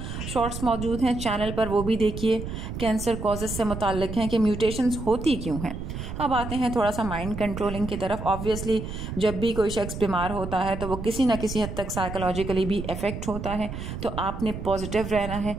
शॉर्ट्स मौजूद हैं चैनल पर, वो भी देखिए। कैंसर कॉजेस से मुताल्लिक हैं कि म्यूटेशंस होती क्यों हैं। अब आते हैं थोड़ा सा माइंड कंट्रोलिंग की तरफ। ऑब्वियसली जब भी कोई शख्स बीमार होता है तो वो किसी ना किसी हद तक साइकोलॉजिकली भी इफेक्ट होता है, तो आपने पॉजिटिव रहना है,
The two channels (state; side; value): noise; right; rumble, 7 dB below the sound